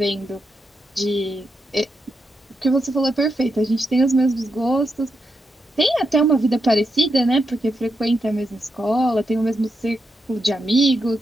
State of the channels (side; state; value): both; normal; correlation 0.84